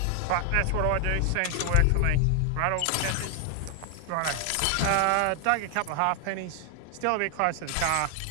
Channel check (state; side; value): different; both; correlation 0.00